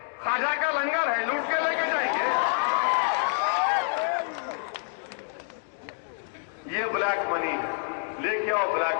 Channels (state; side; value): silent; right; 55 dB below the other